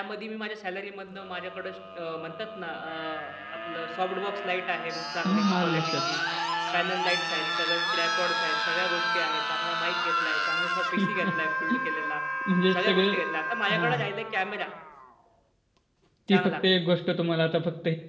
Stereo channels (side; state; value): both; identical; correlation 1.00